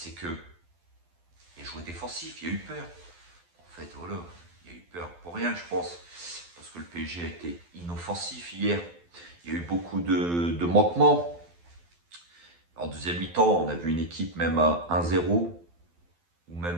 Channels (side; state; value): left; late; 12 ms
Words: que il a joué défensif, il y a eu peur. En fait, voilà, il y a eu peur pour rien, je pense. Parce que le PSG a été inoffensif hier. Il y a eu beaucoup de manquements. En deuxième mi-temps, on a vu une équipe même à 1-0 ou